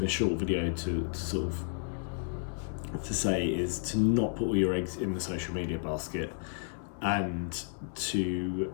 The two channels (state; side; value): silent; right; 56 dB below the other